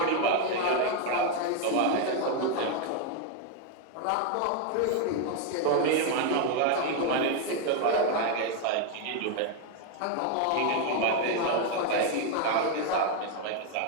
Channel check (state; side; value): different; both; correlation 0.01